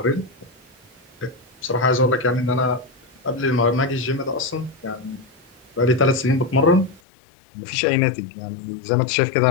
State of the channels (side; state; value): right; drops out; at 7.0 s